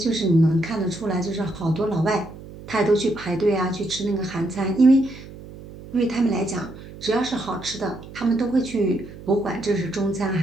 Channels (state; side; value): noise; right; hum, 16 dB below the sound